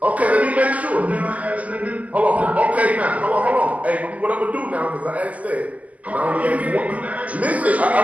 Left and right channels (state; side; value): late; left; 0.074 ms